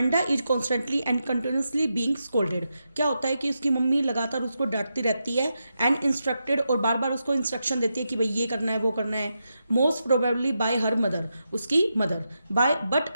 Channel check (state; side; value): inverted; both; correlation -0.86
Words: is constantly and continuously being scolded. क्या होता है कि उसकी मम्मी लगातार उसको डांटती रहती है एंड इंस्ट्रक्टेड, और बार बार उसको इंस्ट्रक्शन देती है कि भाई ये करना है, वो करना है। Most probably by her mother, उसकी mother. By but